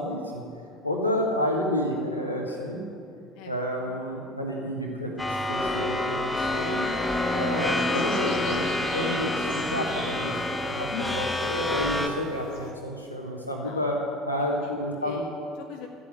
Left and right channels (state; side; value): normal; both; correlation 0.31